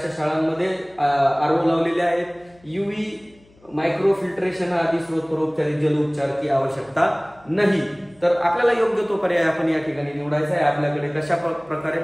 शाळांमध्ये आरओ लावलेले आहेत, यूव्ही मायक्रो फिल्ट्रेशन आदी स्रोतोपचारित जल उपचार की आवश्यकता नाही। तर आपल्याला योग्य तो पर्याय आपण या ठिकाणी निवडायचा आहे। आपल्याकडे कशा प्रकारे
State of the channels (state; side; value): noise; left; hum, 30 dB below the sound